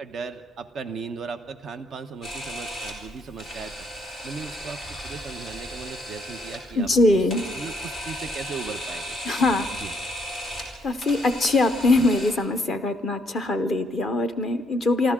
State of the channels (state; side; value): normal; both; correlation 0.71